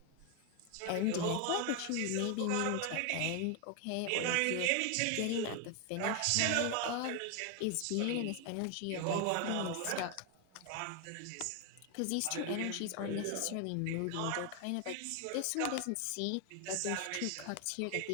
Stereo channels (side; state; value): both; different; correlation 0.01